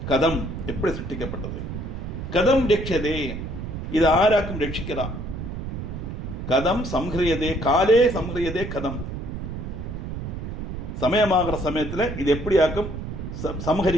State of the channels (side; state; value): right; noise; rumble, 6 dB below the sound